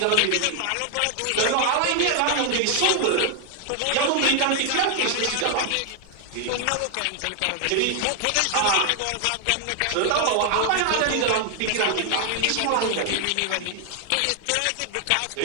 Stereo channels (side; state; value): both; different; correlation 0.00